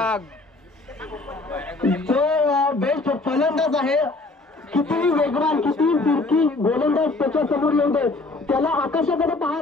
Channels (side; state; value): right; quieter; 3.3 dB